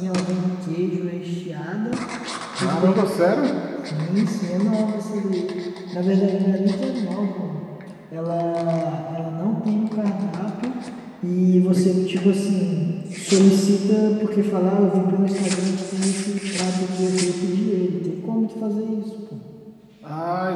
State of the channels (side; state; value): both; identical; correlation 1.00